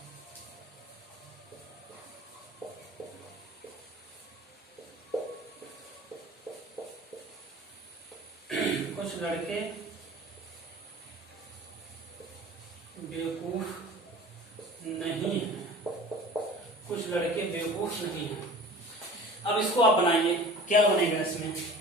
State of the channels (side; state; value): both; normal; correlation 0.42